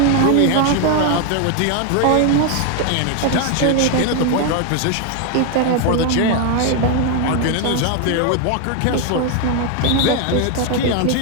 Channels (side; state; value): both; different; correlation 0.01